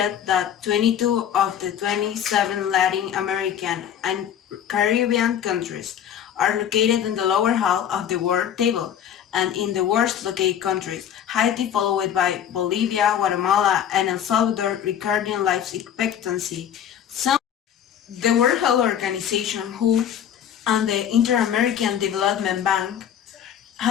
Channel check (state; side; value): quieter; right; 9.5 dB